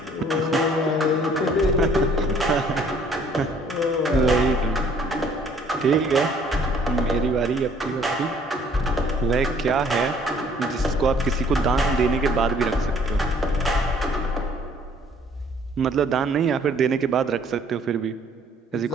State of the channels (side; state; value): both; normal; correlation 0.59